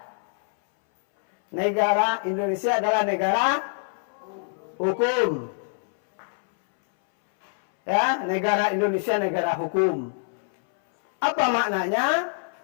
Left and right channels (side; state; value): right; silent; 61 dB below the other